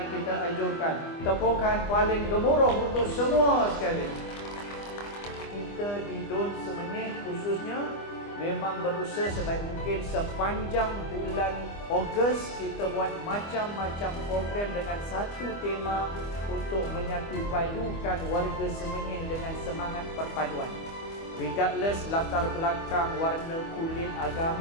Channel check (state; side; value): late; right; 25 ms